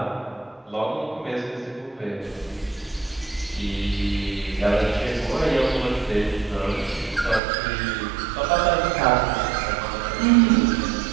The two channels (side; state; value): left; drops out; at 7.4 s